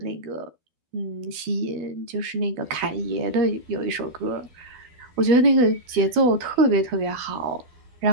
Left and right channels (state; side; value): late; left; 12 ms